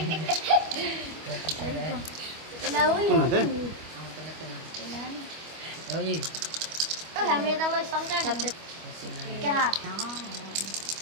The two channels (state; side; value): late; left; 25 ms